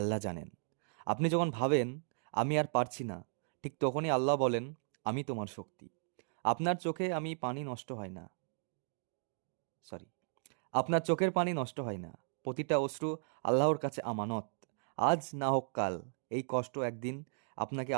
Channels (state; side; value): silent; left; digital silence